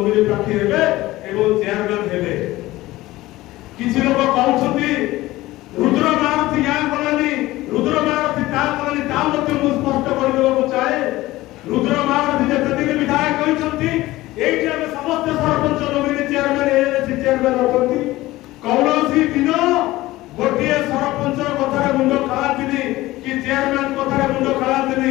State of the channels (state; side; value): quieter; right; 17.8 dB